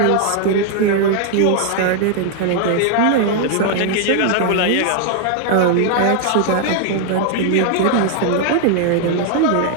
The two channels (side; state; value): both; different; correlation 0.00